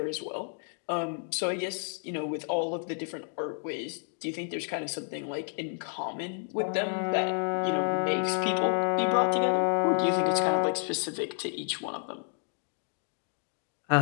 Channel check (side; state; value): right; silent; 58 dB below the other